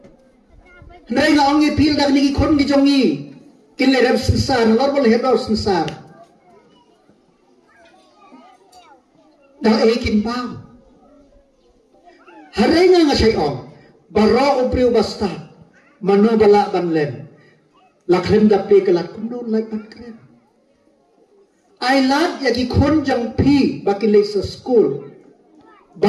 nai nga ongi pil dak niki kon gijongi kin le rab sensar lor bol hedo sensar da ekin bang Harenya nga siya om, baro upriw basta, mano bala banlen, lakren dapi kalat kuno like bankren. Ay lat yagi kon jang pi bakilay sa school,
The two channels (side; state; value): both; identical; correlation 1.00